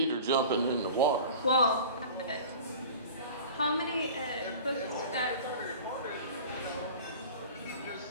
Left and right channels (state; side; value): inverted; both; correlation -0.39